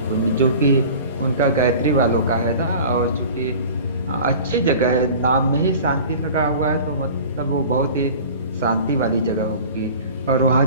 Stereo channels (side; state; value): both; inverted; correlation -0.41